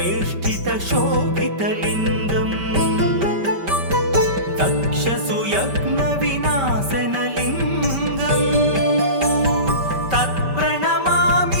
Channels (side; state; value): left; late; 5.2 ms